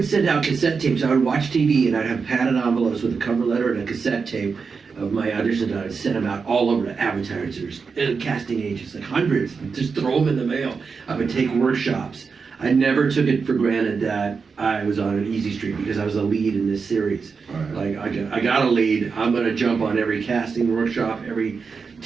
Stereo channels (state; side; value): quieter; left; 5.2 dB